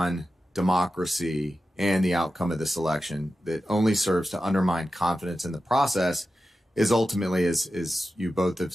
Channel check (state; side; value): normal; both; correlation 0.92